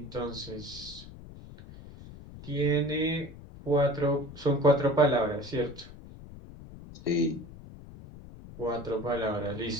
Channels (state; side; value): noise; left; rumble, 16 dB below the sound